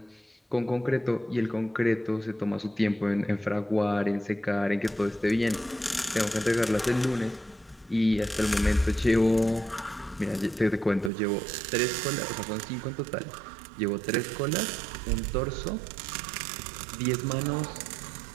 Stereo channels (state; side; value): drops out; left; at 11.1 s